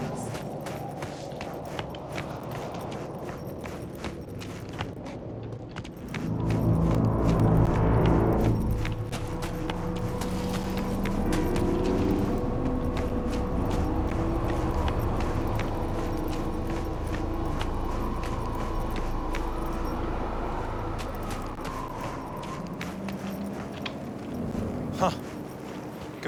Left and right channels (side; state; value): both; identical; correlation 1.00